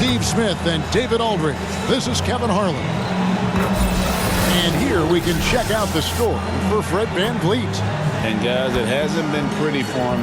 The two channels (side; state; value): both; identical; correlation 1.00